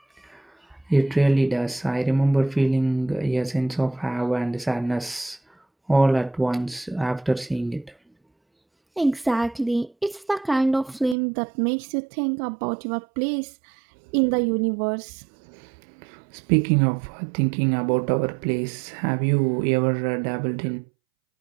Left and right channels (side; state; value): left; drops out; at 11.2 s